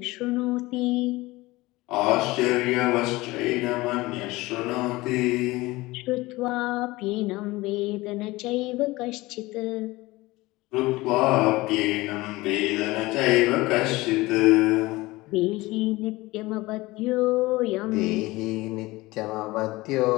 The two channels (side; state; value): right; quieter; 20.4 dB